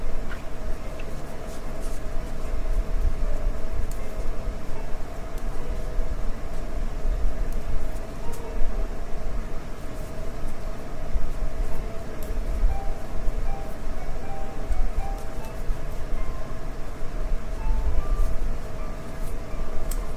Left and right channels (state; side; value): identical; both; correlation 1.00